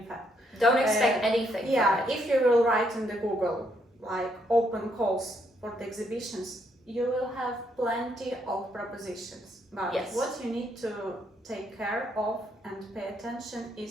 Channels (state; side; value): normal; both; correlation 0.73